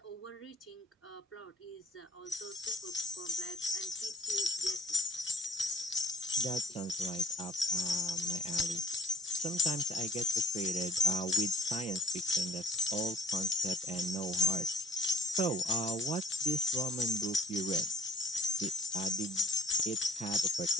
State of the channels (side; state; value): both; normal; correlation 0.51